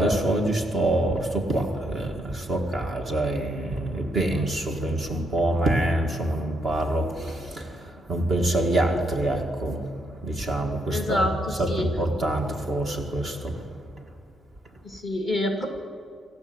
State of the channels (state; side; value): normal; both; correlation 0.75